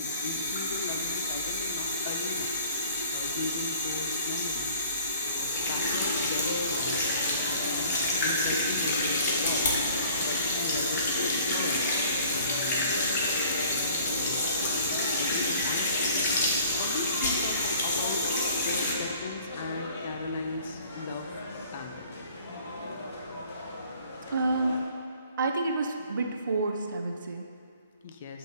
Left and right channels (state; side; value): inverted; both; correlation -0.52